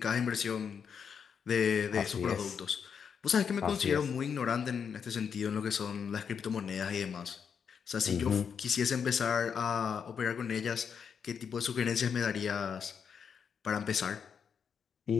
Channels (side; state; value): right; quieter; 6.9 dB